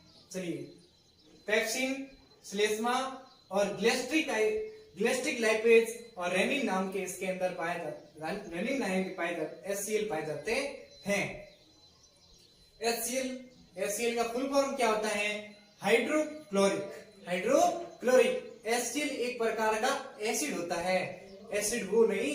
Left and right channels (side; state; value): both; identical; correlation 1.00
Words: चलिए पेप्सिन, श्लेष्मा और ग्लेस्ट्रिक लाइपेज और रेनिन नाम के इसके अंदर पाए जाते HCl पाए जाते हैं। HCl का फुल फॉर्म क्या होता है? हाइड्रोक्लोरिक। HCl एक प्रकार का एसिड होता है। एसिड वो